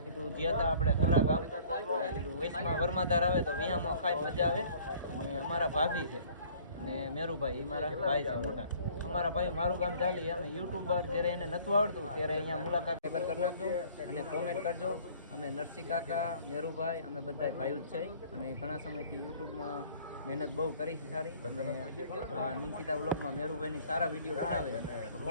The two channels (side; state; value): both; inverted; correlation -0.54